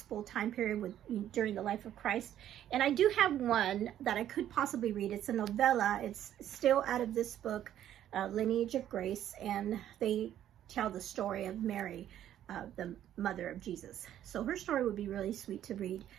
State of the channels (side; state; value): left; quieter; 11.4 dB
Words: time period during the life of Christ. And I do have one that I could possibly read. It's a novella. It's still out of this book, Lineage of Grace, and they tell the story of Mary, the mother of Jesus. So her story would be really sweet to read